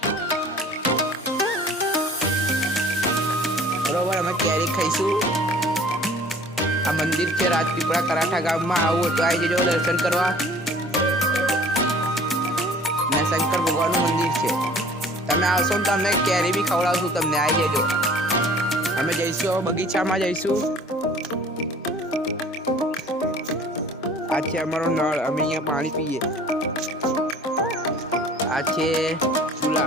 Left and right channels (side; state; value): both; normal; correlation 0.49